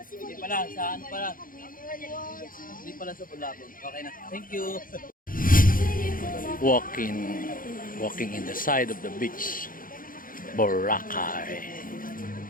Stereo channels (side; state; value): right; late; 0.40 ms